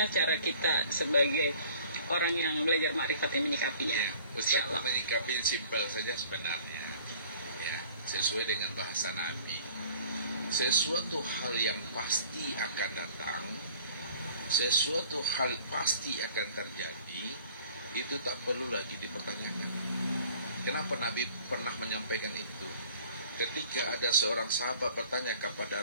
cara kita sebagai orang yang belajar makrifat ini menyikapinya? Ya, Ustadz menyikapi simpel saja sebenarnya, ya, sesuai dengan bahasa Nabi. Sesuatu hal yang pasti akan datang, sesuatu hal pasti akan terjadi, itu tak perlu lagi dipertanyakan. Kenapa Nabi pernah menyampaikan itu? Ketika ada seorang sahabat bertanya kepada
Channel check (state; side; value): inverted; both; correlation -0.50